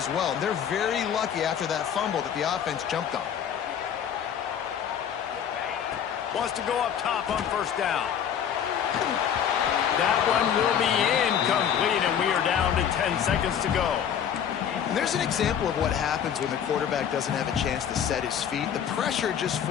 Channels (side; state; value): right; quieter; 8.6 dB